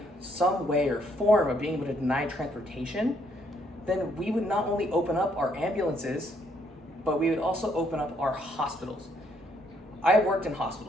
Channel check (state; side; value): normal; both; correlation 0.70